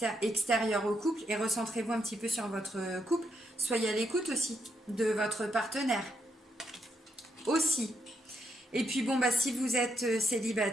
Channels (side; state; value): both; normal; correlation 0.79